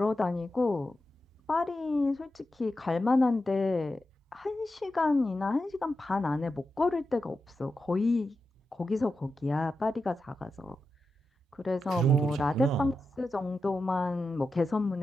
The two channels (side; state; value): both; normal; correlation 0.90